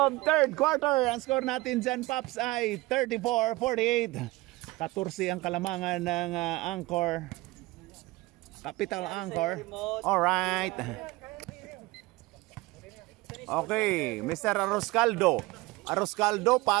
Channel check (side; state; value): left; quieter; 21.1 dB